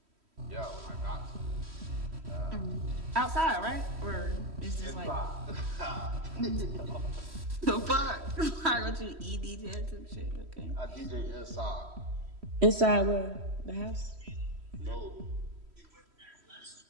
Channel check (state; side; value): late; left; 3.1 ms